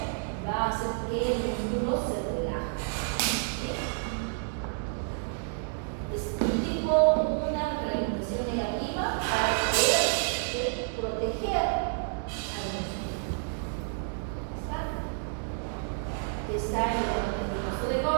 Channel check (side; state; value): left; silent; digital silence